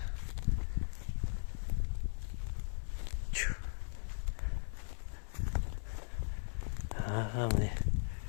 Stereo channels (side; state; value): right; silent; digital silence